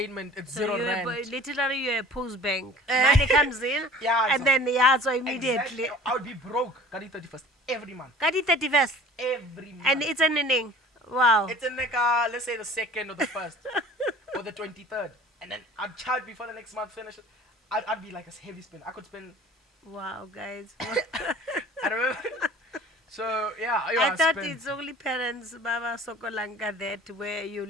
it's So zero you rand. literally you're a post bank. Money comes in, Yeah, and so then so immediately. exactly, I would be broke. Kadi 31st every month. Kadi 31st, Every month. and it's an inning. Wow. It's in like let's say the second or the first or the 23rd, and then I'd charge before the next month finishes. I'd be like a heavy spend. I could spend. Wow, guys. I remember. So yeah, I thought spend. it's only parents, Baba Sokolanka, that where you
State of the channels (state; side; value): normal; both; correlation 0.46